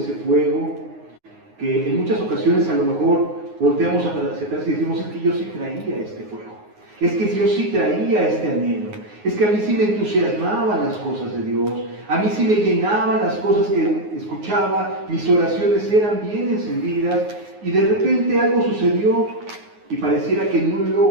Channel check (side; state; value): left; late; 9.5 ms